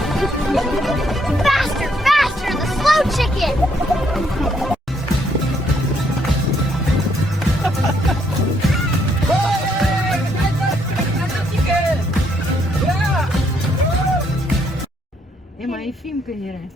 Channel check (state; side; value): normal; both; correlation 0.71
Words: Faster, faster, the slow chicken! הם עייפים כנראה.